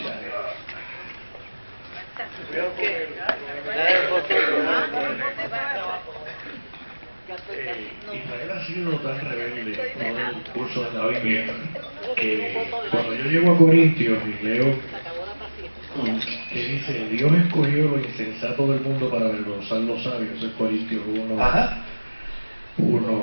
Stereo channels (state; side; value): inverted; both; correlation -1.00